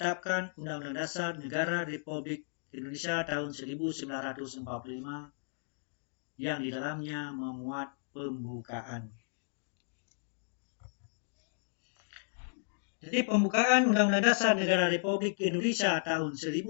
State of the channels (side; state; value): right; silent; digital silence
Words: Undang-Undang Dasar Negara Republik Indonesia tahun 1945 yang di dalamnya memuat pembukaan. Jadi pembukaan Undang-Undang Dasar Negara Republik Indonesia tahun